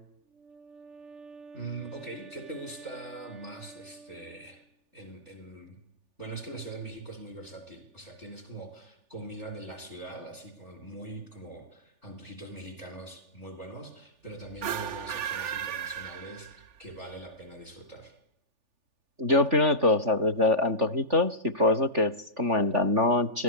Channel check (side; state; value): left; late; 3.4 ms